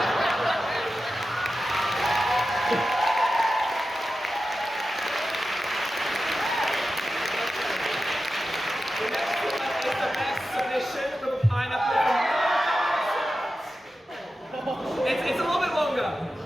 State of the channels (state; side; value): normal; both; correlation 0.92